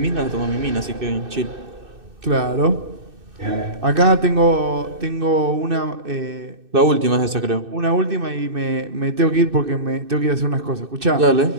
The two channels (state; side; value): late; left; 2.6 ms